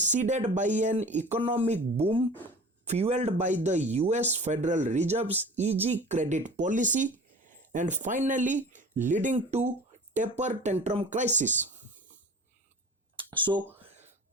by an economic boom fueled by the US Federal Reserve's easy credit policy and finally leading to taper tantrum crisis. So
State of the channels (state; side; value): normal; both; correlation 0.40